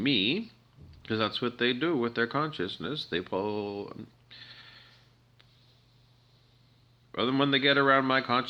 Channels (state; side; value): identical; both; correlation 1.00